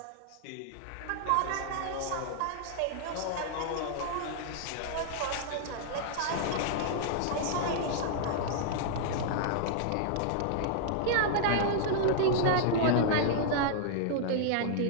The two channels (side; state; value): both; different; correlation -0.01